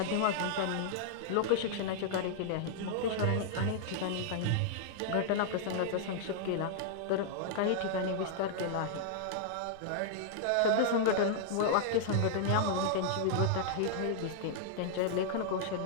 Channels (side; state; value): both; different; correlation -0.01